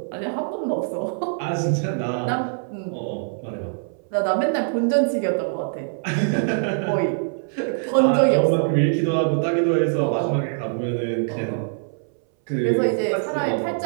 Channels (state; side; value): silent; left; 60 dB below the other